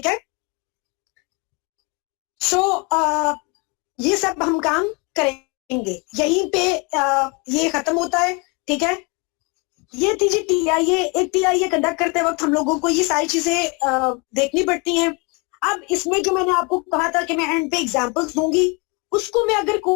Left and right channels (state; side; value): quieter; right; 29.2 dB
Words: है। सो ये सब हम काम करेंगे, यहीं पे ये खत्म होता है, ठीक है। ये थी जी टीआईए। एक टीआईए कंडक्ट करते वक्त हम लोगों को ये सारी चीजें देखनी पड़ती हैं। अब इसमें जो मैंने आपको कहा था कि मैं एंड पे एग्जांपल्स दूंगी, उसको मैं अगर